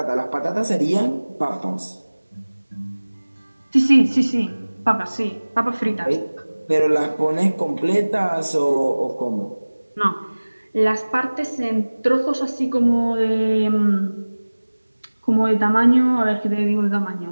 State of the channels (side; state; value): both; inverted; correlation -1.00